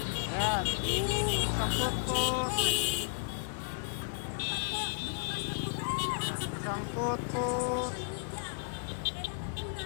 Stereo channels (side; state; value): right; silent; digital silence